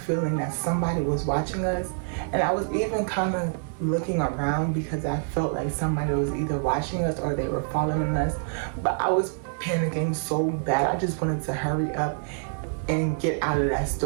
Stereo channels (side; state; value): left; silent; 61 dB below the other